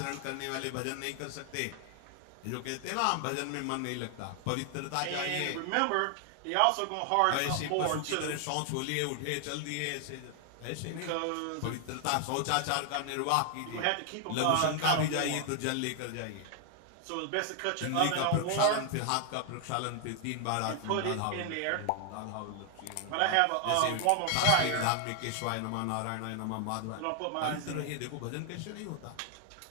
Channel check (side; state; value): both; different; correlation 0.00